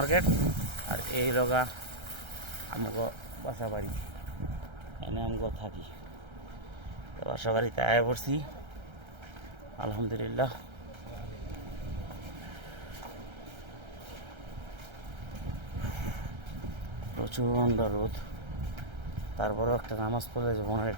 আর এই লোকা আমাকে বাসা বাড়ি, এনে আমাকে থাকি। বাসা বাড়িতে আয় পড়ছি, আলহামদুলিল্লাহ। প্রচণ্ড রোদ, তারপরেও একটা নামাজ পড়লে যে মনের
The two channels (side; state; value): left; late; 1.3 ms